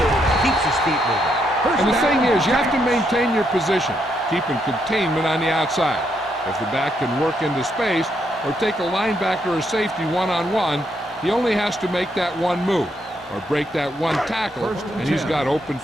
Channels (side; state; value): both; normal; correlation 0.77